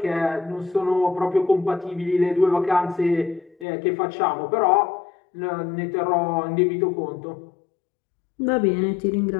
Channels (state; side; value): drops out; right; at 3.7 s